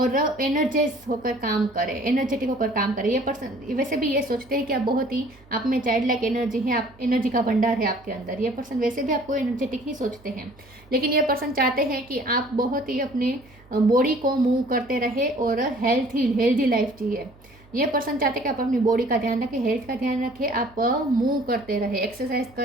एनर्जाइज होकर काम करें, एनर्जेटिक होकर काम करें। ये पर्सन वैसे भी ये सोचते हैं कि आप बहुत ही, आप में चाइल्ड लाइक एनर्जी है, आप एनर्जी का भंडार है आपके अंदर। ये पर्सन वैसे भी आपको एनर्जेटिक ही सोचते हैं। लेकिन ये पर्सन चाहते हैं कि आप बहुत ही अपने बॉडी को मूव करते रहे और हेल्दी लाइफ जिए। ये पर्सन चाहते हैं कि आप अपनी बॉडी का ध्यान रखें, हेल्थ का ध्यान रखें, आप मूव करते रहे, एक्सरसाइज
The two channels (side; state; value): right; noise; hum, 27 dB below the sound